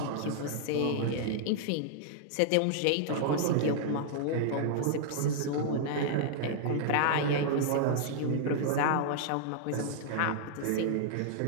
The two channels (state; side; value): different; both; correlation -0.01